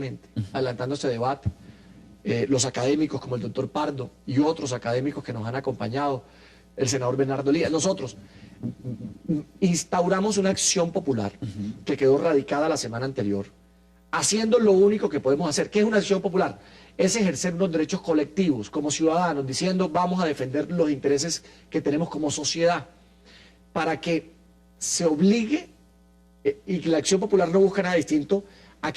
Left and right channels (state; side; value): identical; both; correlation 1.00